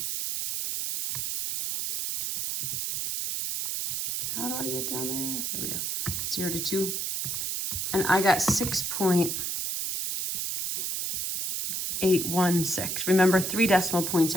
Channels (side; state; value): right; noise; hiss, 2 dB below the sound